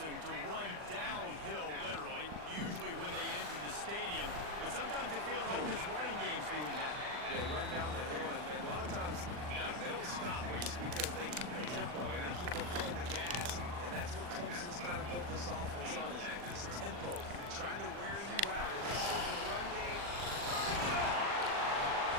to run downhill, literally, usually when they enter the stadium. But sometimes it feels like this running game's doing that. They run down the hill, and a lot of times they don't stop, Reese, because they keep the tempo and they keep the foot in the gas. And that's what Clemson's kind of built this offense on, is this tempo, trying to wear you out in this run game.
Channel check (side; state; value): left; late; 40 ms